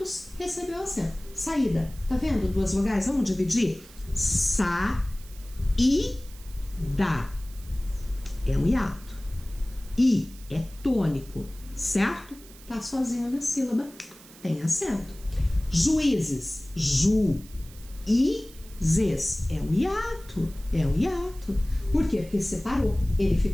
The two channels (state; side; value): noise; right; hiss, 21 dB below the sound